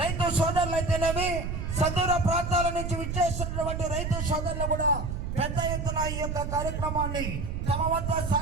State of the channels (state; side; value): noise; right; rumble, 4 dB below the sound